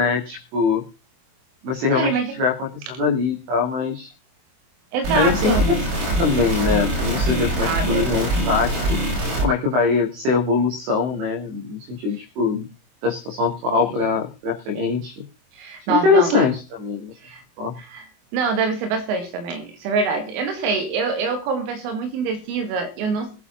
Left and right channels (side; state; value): left; late; 24 ms